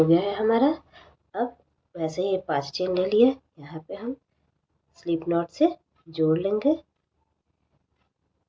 गया है हमारा। अब वैसे ही 5 चेन ले लिए, यहाँ पे हम स्लिप नॉट से जोड़ लेंगे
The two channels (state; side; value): identical; both; correlation 1.00